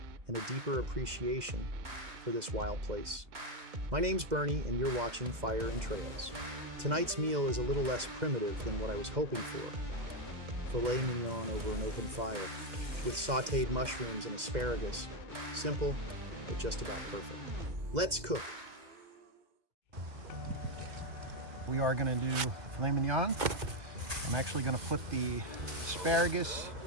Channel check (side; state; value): left; late; 2.0 ms